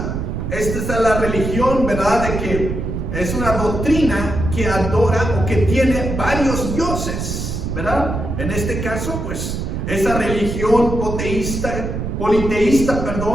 Esta es la religión, ¿verdad?, de que es una doctrina que adora o que tiene varios dioses, ¿verdad? En este caso, pues, esa religión politeísta,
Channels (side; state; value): right; noise; rumble, 4 dB below the sound